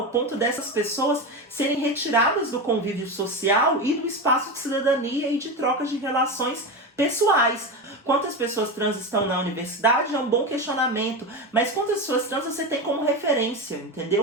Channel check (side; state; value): both; normal; correlation 0.19